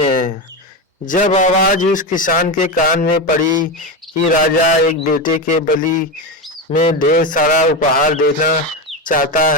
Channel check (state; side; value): normal; both; correlation 0.16